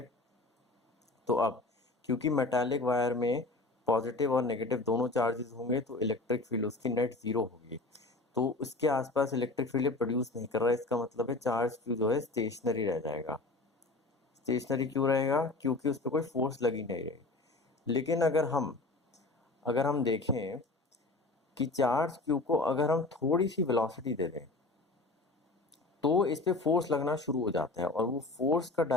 अब क्योंकि मेटालिक वायर में पॉजिटिव और नेगेटिव दोनों चार्जेस होंगे तो इलेक्ट्रिक फील्ड उसकी नेट जीरो होगी। तो उसके आसपास इलेक्ट्रिक फील्ड प्रोड्यूस नहीं कर रहा है। इसका मतलब है चार्ज क्यू जो है स्टेशनरी रह जाएगा। स्टेशनरी क्यों रहेगा? क्योंकि उस पर कोई फोर्स लगी नहीं रही। लेकिन अगर हम देखें कि चार्ज क्यू को अगर हम थोड़ी सी वेलोसिटी दे दें तो इस पे फोर्स लगना शुरू हो जाता है और वो फोर्स का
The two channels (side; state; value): right; quieter; 3.2 dB